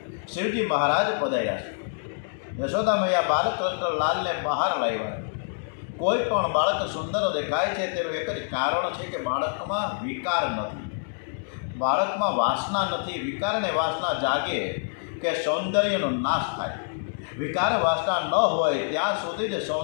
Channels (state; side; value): silent; right; digital silence